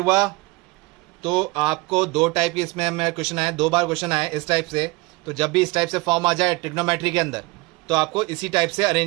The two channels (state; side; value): quieter; left; 24.1 dB